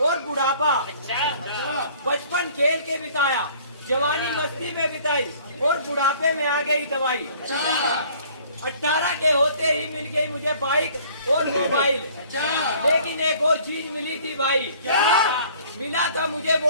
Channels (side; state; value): both; inverted; correlation -0.54